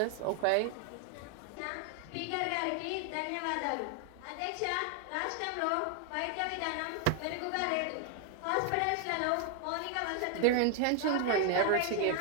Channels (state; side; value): different; both; correlation 0.00